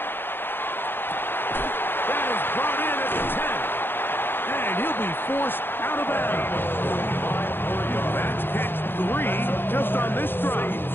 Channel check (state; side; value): late; right; 0.10 ms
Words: That is brought in at the 10. And he'll be forced out of bounds. That's catch 3 just on this